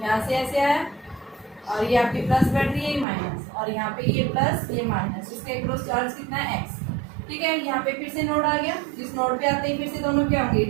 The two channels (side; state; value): left; drops out; at 3.1 s